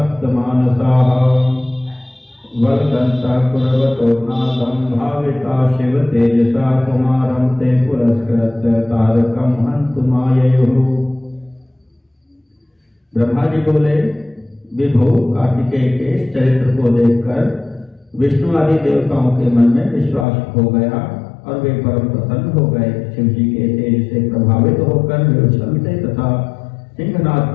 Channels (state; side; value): drops out; right; at 20.2 s